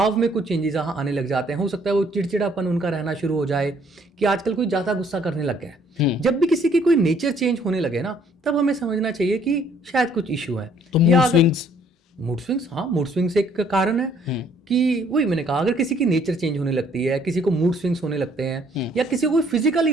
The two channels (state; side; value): normal; both; correlation 0.62